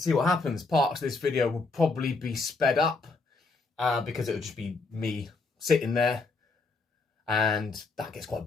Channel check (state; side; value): quieter; right; 3.8 dB